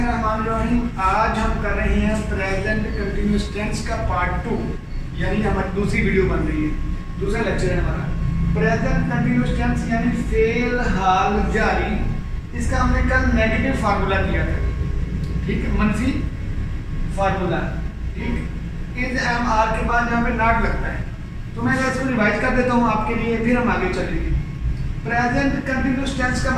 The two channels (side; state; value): both; identical; correlation 1.00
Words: आज हम कर रहे हैं प्रेजेंट कंटिन्यूअस टेंस का पार्ट 2, यानी हमारी दूसरी वीडियो बन रही है, दूसरा लेक्चर है हमारा। प्रेजेंट कंटिन्यूअस टेंस यानी फेल हाल जारी। इसका हमने कल नेगेटिव फार्मूला किया था, ठीक है, मनफी फार्मूला, ठीक। इज एम आर के बाद यहाँ पे नॉट लगता है, तो मैं इसको रिवाइज कर देता हूँ आपके लिए, फिर हम आगे चलेंगे। प्रेजेंट कंटिन्यूअस टेंस